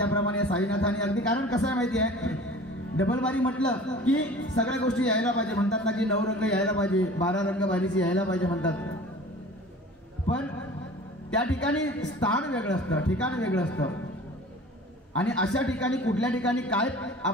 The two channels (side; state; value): both; normal; correlation 0.43